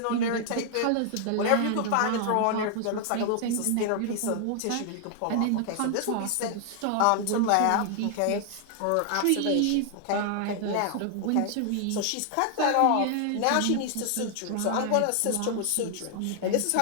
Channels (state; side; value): different; both; correlation 0.00